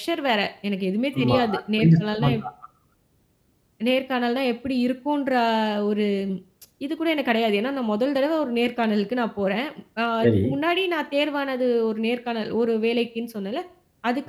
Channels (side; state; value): both; identical; correlation 1.00